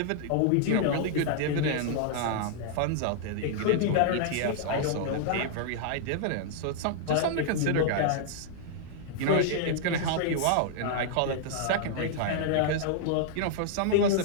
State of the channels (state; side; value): different; both; correlation -0.01